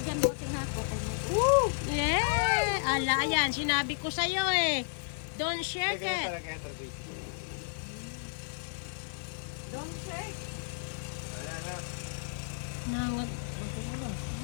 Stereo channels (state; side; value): silent; right; 56 dB below the other